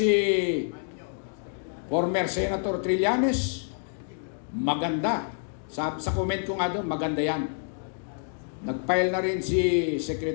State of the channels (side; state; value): right; silent; digital silence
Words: former Senator Trillanes. Maganda. Sa comment ko nga doon, maganda yan. Nag-file na rin si